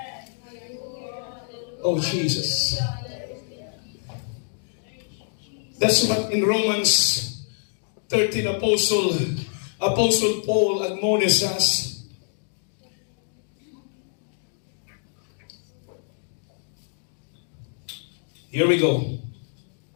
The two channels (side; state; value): right; silent; digital silence